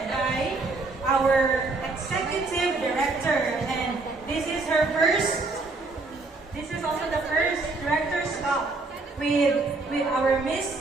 by our executive director, and this is her first. This is also the first Director's Cup with our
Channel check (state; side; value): quieter; left; 3.5 dB